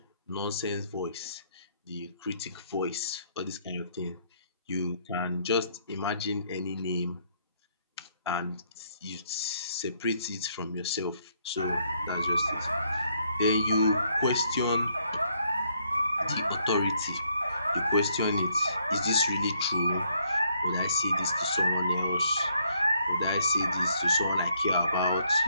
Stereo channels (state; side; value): inverted; both; correlation -0.71